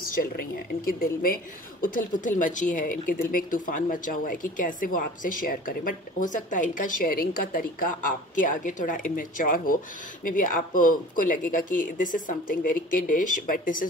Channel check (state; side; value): normal; both; correlation 0.43